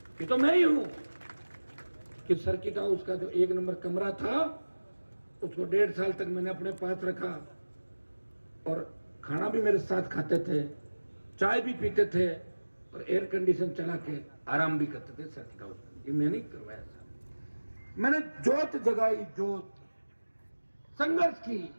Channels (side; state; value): both; inverted; correlation -1.00